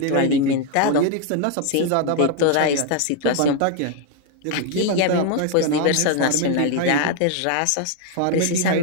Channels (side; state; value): both; different; correlation 0.01